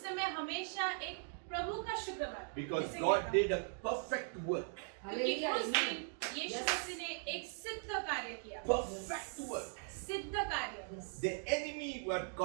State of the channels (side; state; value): left; silent; 51 dB below the other